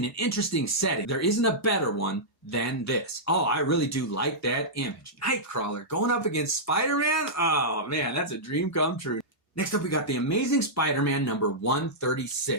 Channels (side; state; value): both; normal; correlation -0.12